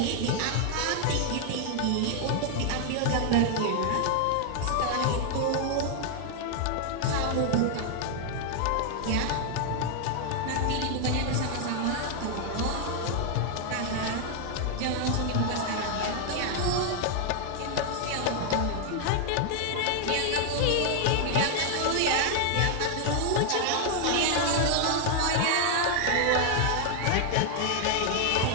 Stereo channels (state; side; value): different; both; correlation 0.00